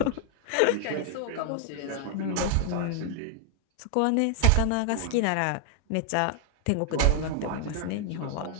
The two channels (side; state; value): both; different; correlation 0.00